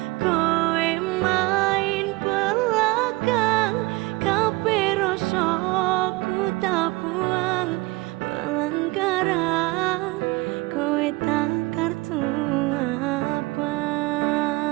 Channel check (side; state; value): left; quieter; 22.7 dB